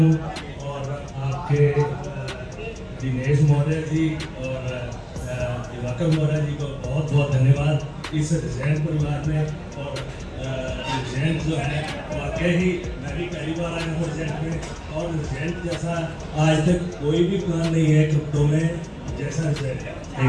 और आपके दिनेश महोदय जी और दिवाकर महोदय जी को बहुत बहुत धन्यवाद इस रिजेंट परिवार में। और रिजेंट जो है वाकई ही मैं भी पहली बार आया हूँ रिजेंट में, और रिजेंट जैसा आज तक कोई भी प्लान नहीं है क्रिप्टो में जैसा रिजेंट है।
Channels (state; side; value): identical; both; correlation 1.00